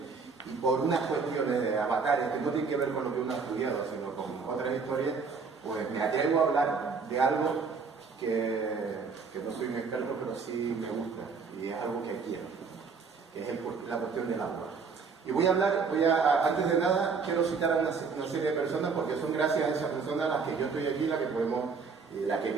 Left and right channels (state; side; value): quieter; left; 5.1 dB